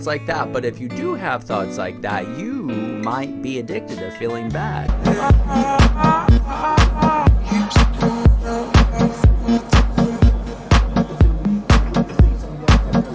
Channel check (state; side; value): identical; both; correlation 1.00